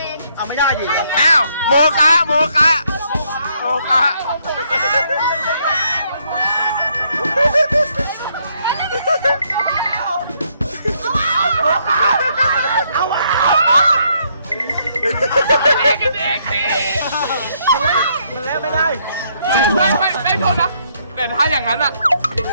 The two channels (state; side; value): inverted; both; correlation -0.72